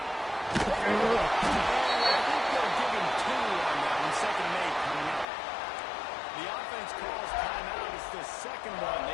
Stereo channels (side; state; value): right; drops out; at 5.2 s